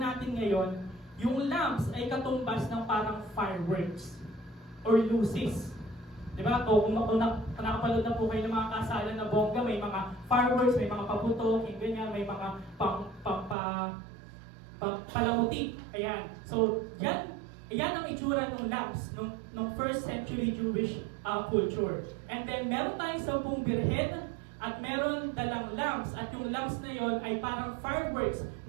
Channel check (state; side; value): drops out; left; at 13.6 s